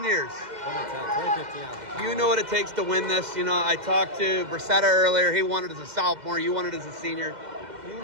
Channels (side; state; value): left; late; 2.1 ms